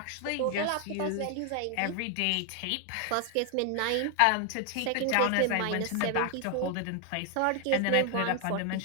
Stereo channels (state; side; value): different; both; correlation 0.00